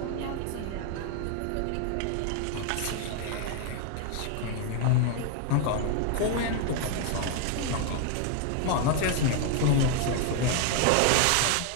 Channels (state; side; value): different; both; correlation 0.00